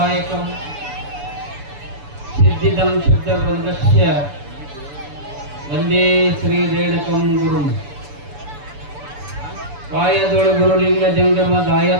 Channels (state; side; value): late; left; 6.9 ms